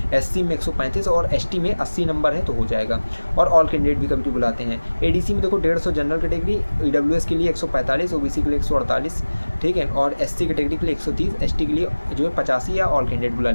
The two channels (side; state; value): both; inverted; correlation -1.00